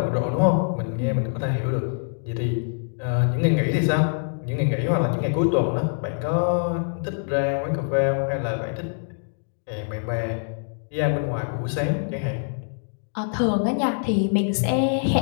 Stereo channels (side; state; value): right; silent; digital silence